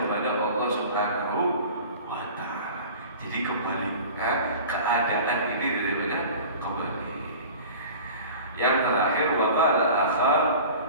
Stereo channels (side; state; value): both; inverted; correlation -0.39